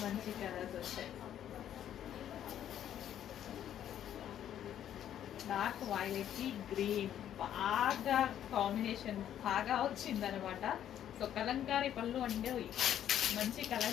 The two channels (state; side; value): quieter; right; 10.6 dB